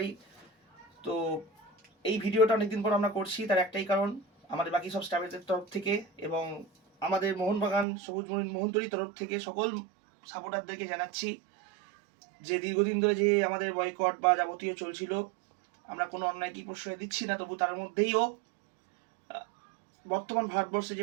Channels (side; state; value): left; drops out; at 7.9 s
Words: তো এই ভিডিওটা অনেকদিন পর আমরা করছি, তার একটাই কারণ, আমাদের বাকি সব স্টাফের তরফ থেকে এবং আমাদের মোহনবাগান সবুজ মেরুন মোহনতরীর তরফ থেকে সকল সাপোর্টারদেরকে জানাচ্ছি যে দীর্ঘদিন ধরে যে আমাদের বয়কট বা যাবতীয় চলছিল, আমরা কোনো অন্যায় কি প্রশ্রয় দিচ্ছি না, তবু তার মধ্যেইও বর্তমান ভারতবর্ষে